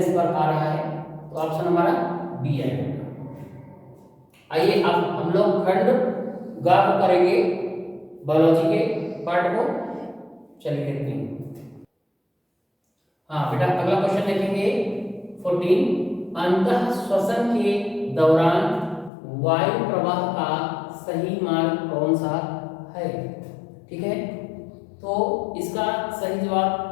पर आ रहा है, तो ऑप्शन हमारा बी आएगा। आइए अब हम लोग खंड ग को करेंगे, बायोलॉजी के पार्ट को, चलिए देखते हैं। हाँ बेटा, अगला क्वेश्चन देखेंगे 14, अंतः श्वसन के दौरान वायु प्रवाह का सही मार्ग कौन सा है। ठीक है, तो इसका सही जवाब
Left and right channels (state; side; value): drops out; right; at 19.1 s